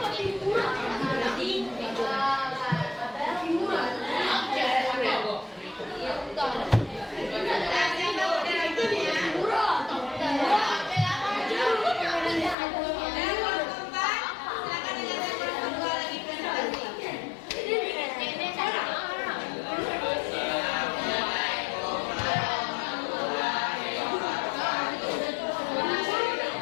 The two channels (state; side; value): drops out; right; at 12.6 s